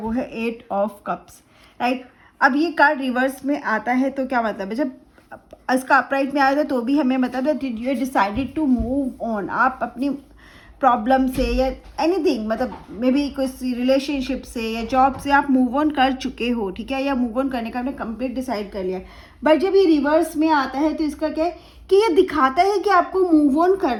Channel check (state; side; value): identical; both; correlation 1.00